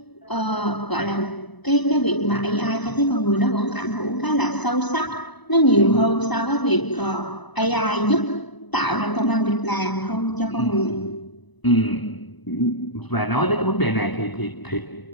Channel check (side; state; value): right; late; 1.0 ms